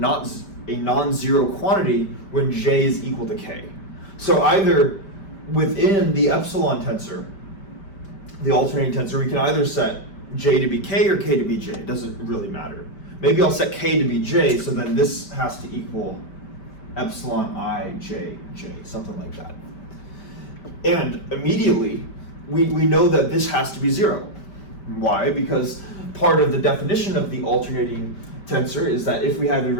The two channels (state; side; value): late; right; 5.1 ms